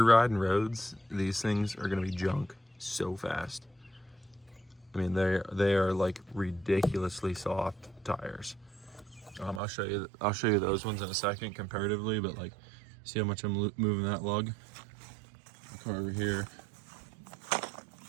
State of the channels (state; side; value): drops out; left; at 9.6 s